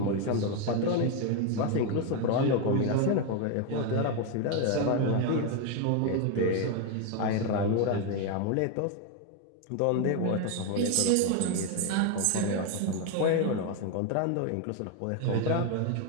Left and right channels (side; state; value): both; different; correlation 0.02